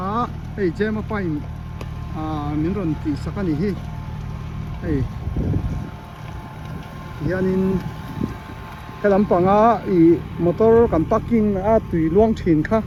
á hay che mà phải miếng ròn tùy sắc anh hi hay hiện in cái làm bằng motor cần parking tùy luang thìn khác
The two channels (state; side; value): identical; both; correlation 1.00